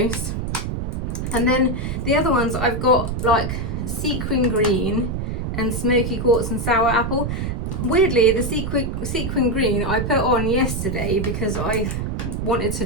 And then the other ones I've got like Sequin Green and Smoky, Quartz and Sour Apple. Weirdly, the sequin green I put on yesterday because I wanted to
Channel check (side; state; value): right; noise; rumble, 3 dB below the sound